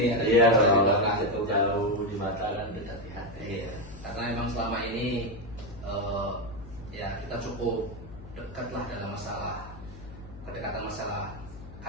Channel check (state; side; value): noise; left; hum, 15 dB below the sound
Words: Iya, di kalau belakang itu. jauh di mata kan dekat di hati. Iya, karena memang selama ini ya kita cukup dekat lah dalam kedekatan masalah